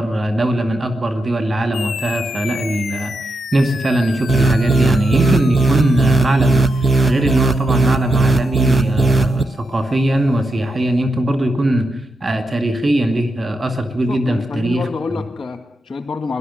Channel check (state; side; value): normal; both; correlation 0.85